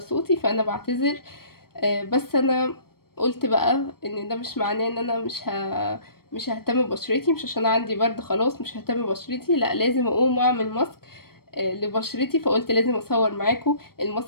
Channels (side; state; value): right; late; 0.94 ms